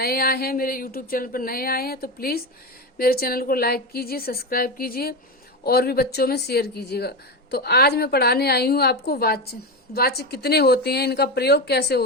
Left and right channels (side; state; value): both; normal; correlation 0.17